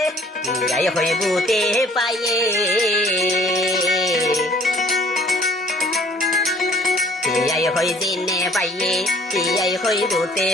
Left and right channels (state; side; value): normal; both; correlation 0.56